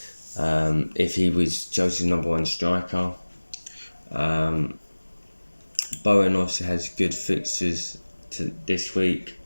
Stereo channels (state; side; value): inverted; both; correlation -1.00